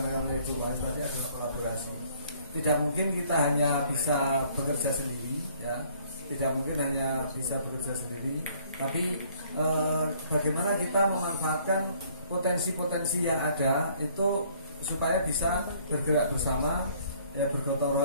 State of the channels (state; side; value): inverted; both; correlation -0.61